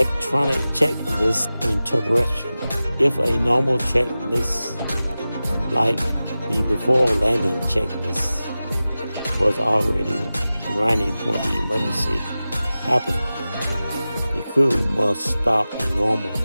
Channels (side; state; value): both; inverted; correlation -0.95